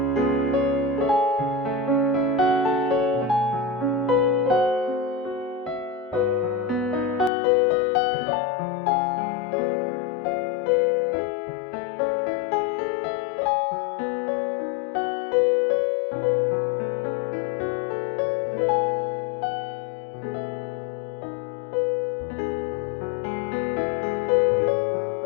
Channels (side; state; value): right; drops out; at 7.3 s